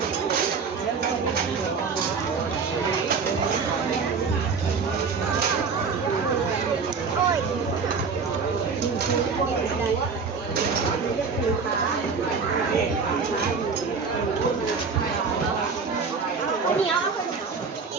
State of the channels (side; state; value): left; quieter; 5.2 dB